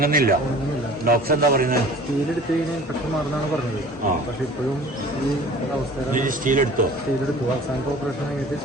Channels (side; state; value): both; normal; correlation 0.45